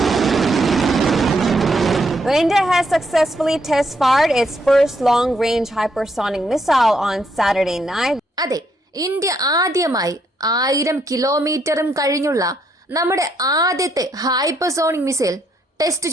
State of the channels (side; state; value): both; normal; correlation 0.75